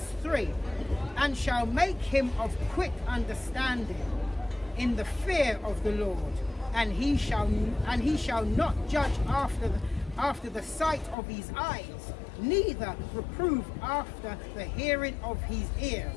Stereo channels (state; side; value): drops out; right; at 11.2 s